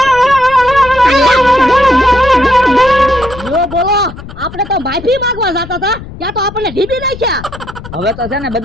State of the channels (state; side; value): noise; left; rumble, 14 dB below the sound